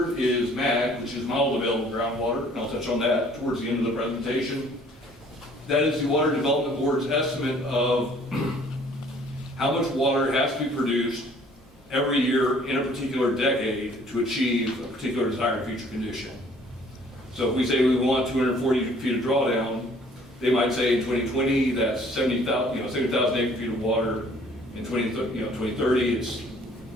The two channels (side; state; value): both; normal; correlation 0.57